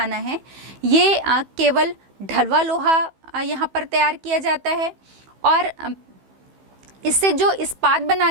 है ये केवल ढलवा लोहा यहाँ पर तैयार किया जाता है और इससे जो इस्पात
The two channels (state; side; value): late; left; 15 ms